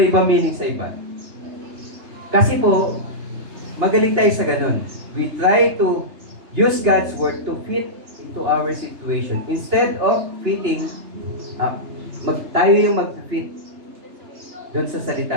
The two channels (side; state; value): left; late; 3.3 ms